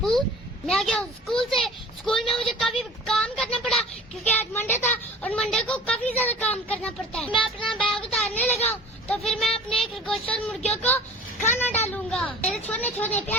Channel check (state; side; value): normal; both; correlation 0.42